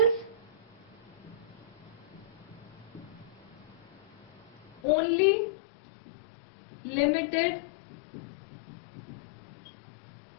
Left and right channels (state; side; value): drops out; right; at 4.8 s